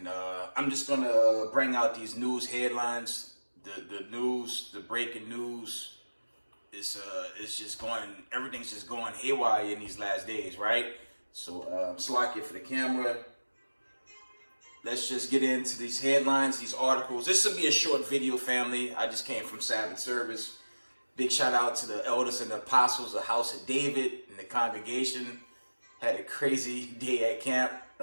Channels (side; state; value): both; inverted; correlation -1.00